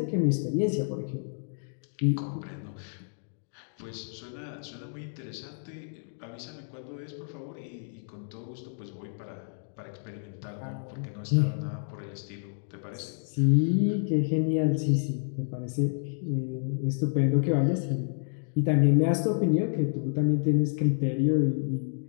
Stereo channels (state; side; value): silent; right; digital silence